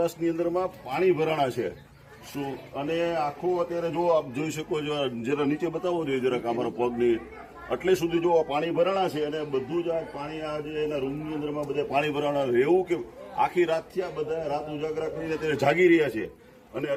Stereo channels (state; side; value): identical; both; correlation 1.00